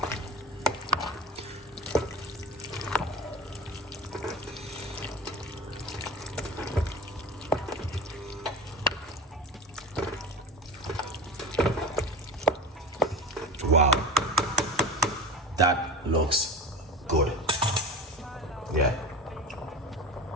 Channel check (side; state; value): both; normal; correlation 0.31